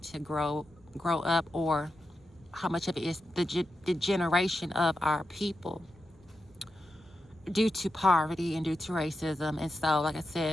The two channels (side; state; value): left; noise; rumble, 29 dB below the sound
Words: grow up, or how much of it is the generation of our people due to poverty and due to racism. And so, like I